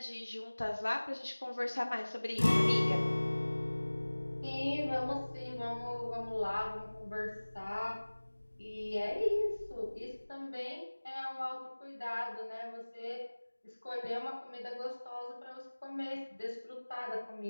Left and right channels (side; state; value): both; inverted; correlation -1.00